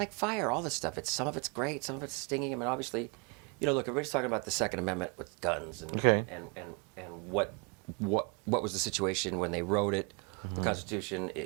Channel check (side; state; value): left; quieter; 33.0 dB